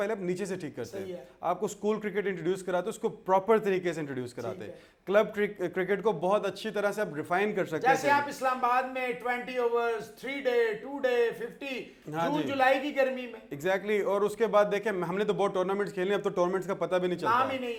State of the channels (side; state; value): both; identical; correlation 1.00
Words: आप नीचे से ठीक करते हैं। आपको स्कूल क्रिकेट इंट्रोड्यूस कराते, उसको प्रॉपर तरीके से इंट्रोड्यूस कराते। क्लब क्रिकेट को बहुत अच्छी तरह से आप रिफाइन कर सकते हैं। जैसे आप इस्लामाबाद में 20 ओवर्स, 3 डे, 2 डे, 50 जून जुलाई की गर्मी में। एग्जैक्टली। और उसके बाद देखें, हमने तो बहुत टूर्नामेंट्स खेले, अब तो टूर्नामेंट्स का पता भी नहीं चलता, नाम ही नहीं